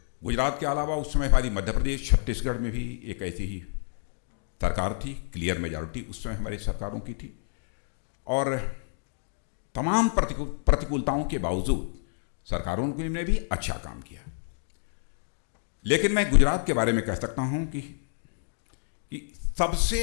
गुजरात के अलावा उस समय हमारी मध्य प्रदेश, छत्तीसगढ़ में भी एक ऐसी ही सरकार थी, क्लियर मेजॉरिटी उस समय हमारी सरकारों की थी। और तमाम प्रतिकूलताओं के बावजूद सरकारों ने भी अच्छा काम किया। लेकिन मैं गुजरात के बारे में कह सकता हूं कि सबसे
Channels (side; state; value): right; silent; digital silence